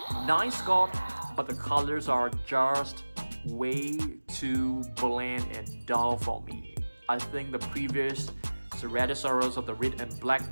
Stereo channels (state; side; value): inverted; both; correlation -1.00